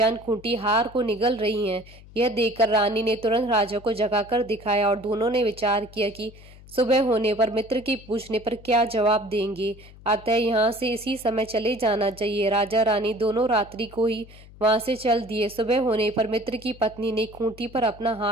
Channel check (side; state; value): left; noise; hum, 21 dB below the sound